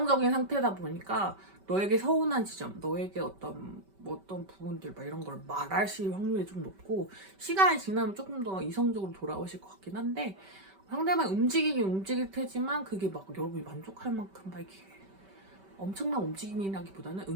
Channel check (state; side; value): late; left; 5.2 ms